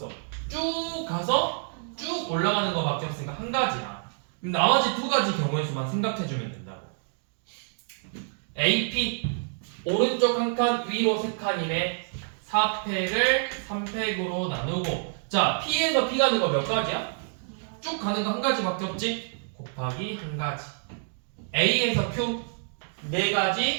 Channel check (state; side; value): silent; left; digital silence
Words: 쭉 가서 쭉 올라가는 거밖에 없으니까 한 가지야. 그럼 나머지 두 가지 경우의 수만 생각해주면 된다고. AP 오른쪽 한 칸, 위로 세 칸이네. 4팩을 3팩으로 나누고, 자 P에서 B 가는 거 몇 가지야? 쭉 가는 거 한 가지밖에 없지? 곱하기 한 가지. A에서 Q 네